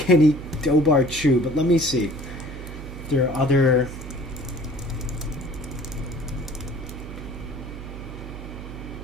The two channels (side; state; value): right; noise; hum, 11 dB below the sound